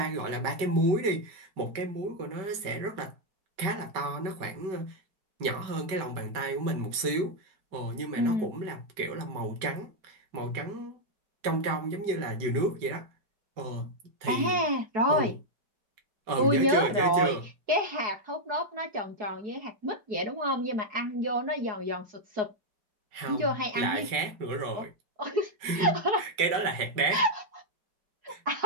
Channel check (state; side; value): late; left; 5.1 ms